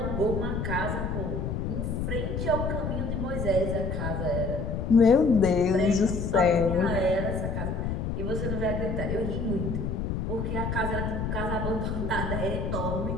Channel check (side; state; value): left; noise; rumble, 2 dB below the sound